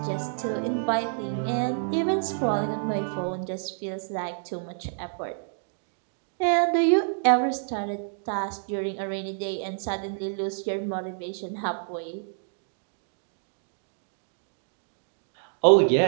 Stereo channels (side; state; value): left; silent; digital silence